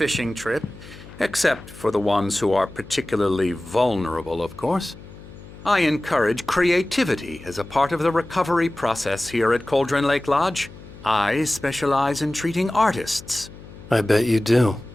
trip, except for the ones who are particularly vulnerable, of course. I encourage creativity as a part of the recovery process here at Cauldron Lake Lodge. I specialize in treating artists. I bet you do.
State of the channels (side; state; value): left; noise; hum, 18 dB below the sound